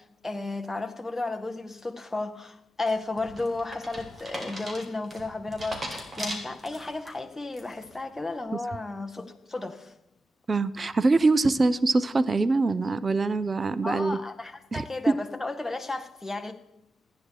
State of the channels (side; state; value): both; normal; correlation 0.92